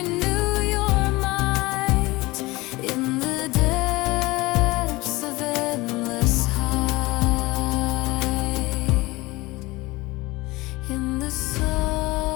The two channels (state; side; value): quieter; right; 21.4 dB